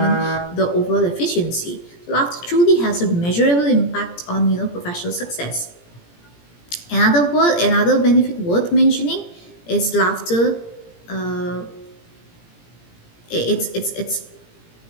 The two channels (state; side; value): late; right; 17 ms